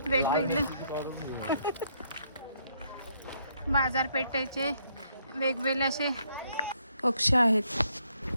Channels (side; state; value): both; inverted; correlation -0.72